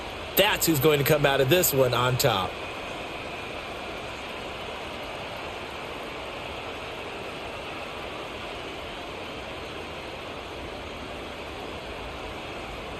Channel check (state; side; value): identical; both; correlation 1.00